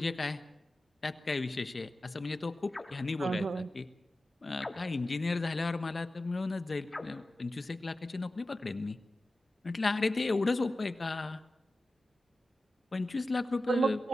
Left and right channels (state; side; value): normal; both; correlation 0.94